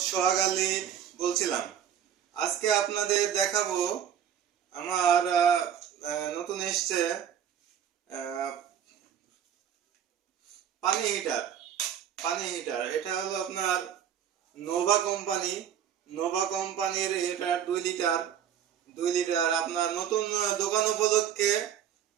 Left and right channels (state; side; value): quieter; left; 9.3 dB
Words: সোহাগ আলী বলছিলাম। আজকে আপনাদের দেখাবো আমার নতুন এসছে পানি হিটার। এটা হলো আপনার নোভা কোম্পানির। এটা 2 লিটার আপনার নতুন দোকান উপলক্ষে